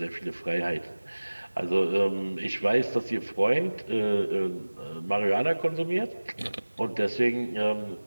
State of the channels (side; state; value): both; inverted; correlation -1.00